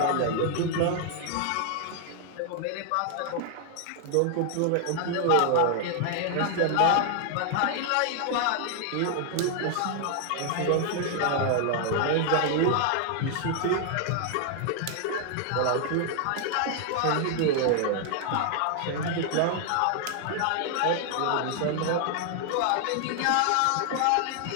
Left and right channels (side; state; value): both; different; correlation 0.00